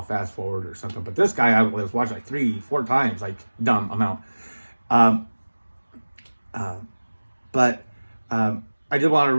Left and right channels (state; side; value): inverted; both; correlation -1.00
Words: fast forward or something. But this guy, I was watching like 3-4 times, like dumb amount. But I did want to